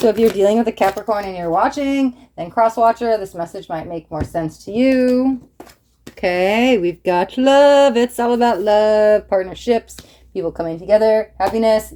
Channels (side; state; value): both; identical; correlation 1.00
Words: if you're dealing with a Capricorn and you're watching, then cross-watcher, this message might make more sense to you. Okay, we've got love. It's all about love, partnerships, people coming together, happiness,